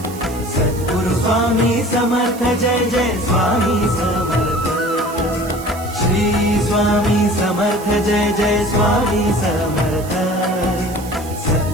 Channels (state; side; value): noise; right; hiss, 17 dB below the sound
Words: सद्गुरु स्वामी समर्थ जय जय स्वामी समर्थ श्री स्वामी समर्थ जय जय स्वामी समर्थ